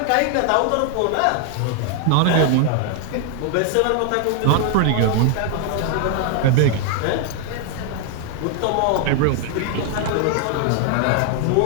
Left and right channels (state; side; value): different; both; correlation 0.00